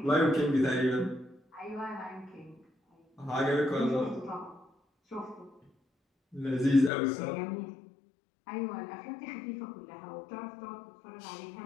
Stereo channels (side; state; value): right; drops out; at 6.9 s